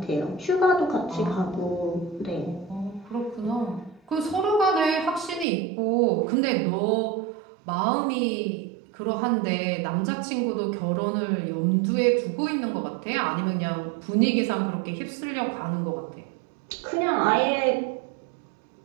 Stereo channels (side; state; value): left; drops out; at 5.5 s